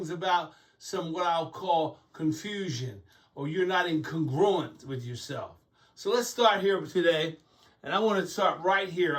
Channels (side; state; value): both; identical; correlation 1.00